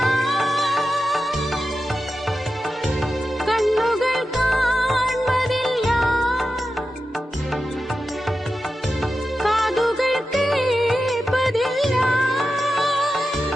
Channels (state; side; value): normal; both; correlation 0.91